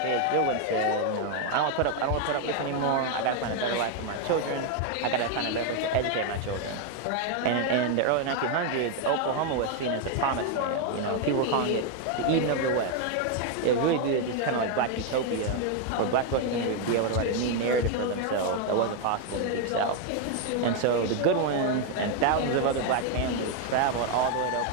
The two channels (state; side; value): different; both; correlation 0.01